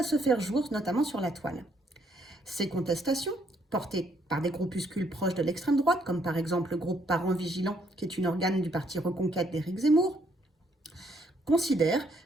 se faire jour, notamment sur la toile. Ces contestations, portées par des groupuscules proches de l'extrême droite, comme par exemple le groupe Parents Vigilants, qui est une organe du parti Reconquête d'Éric Zemmour, considèrent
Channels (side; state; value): both; normal; correlation 0.70